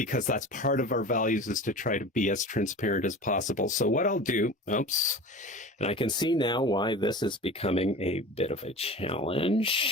that's part of our values, is to try to be as transparent as possible. So what I'll do, oops, and I can see now why this is becoming a bit of a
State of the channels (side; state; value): both; normal; correlation 0.35